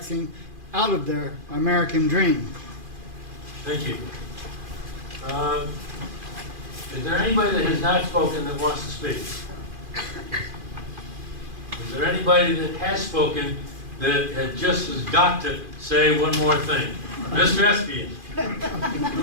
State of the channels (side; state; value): left; late; 2.5 ms